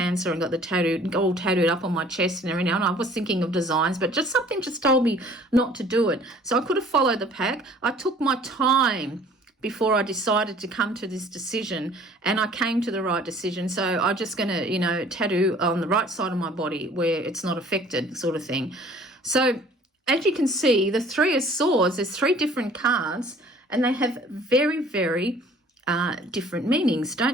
and got the all tattooed up on my chest and everything. And I was thinking of designs, but something told me not to do it. So I could have followed the pack. I took my time before I decided to come to this decision, and I came to the right decision. So I'm just going to, tattoo on the right side of my body where it's not affected, sort of thing. So as you can see, the Three of Swords, there's 3 different cards, and they have very, very different meanings,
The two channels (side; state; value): both; normal; correlation 0.53